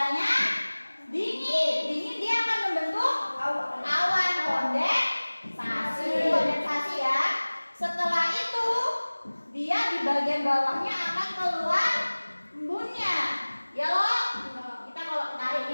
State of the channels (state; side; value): inverted; both; correlation -1.00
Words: dingin. Dingin dia akan membentuk awan kondensasi ya. Setelah itu dia di bagian bawahnya akan keluar embunnya. Ya loh. Kita kalau tarik